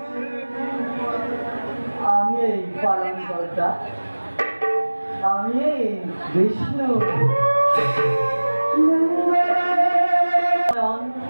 আমি এই পালন কর্তা আমি এই বিষ্ণু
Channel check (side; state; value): both; inverted; correlation -1.00